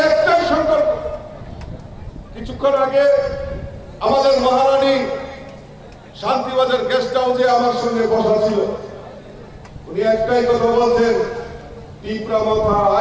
একটাই সংকল্প। কিছুক্ষণ আগে আমাদের মহারানী শান্তিবাজার গেস্ট হাউসে আমার সঙ্গে বসা ছিল, উনি একটাই কথা বলছেন, ত্রিপুরা মথা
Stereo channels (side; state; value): both; identical; correlation 1.00